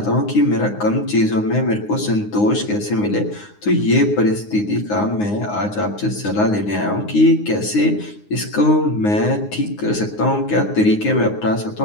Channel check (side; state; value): right; late; 9.7 ms